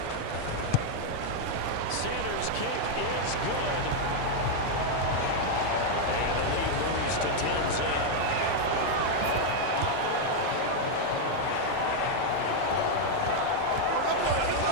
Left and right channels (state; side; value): different; both; correlation 0.00